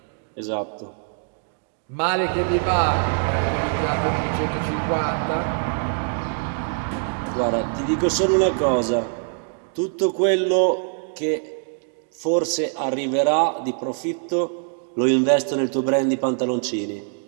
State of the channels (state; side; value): silent; left; 63 dB below the other